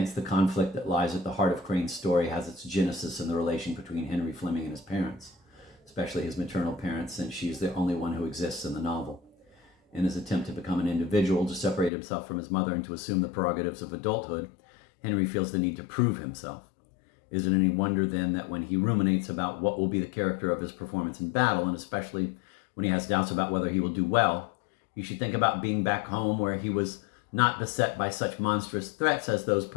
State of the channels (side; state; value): right; drops out; at 11.9 s